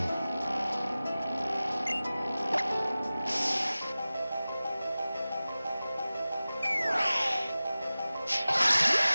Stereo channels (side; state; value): both; inverted; correlation -0.97